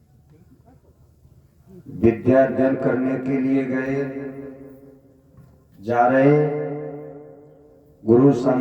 विद्या अध्ययन करने के लिए गए, जा रहे गुरु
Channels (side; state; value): both; identical; correlation 1.00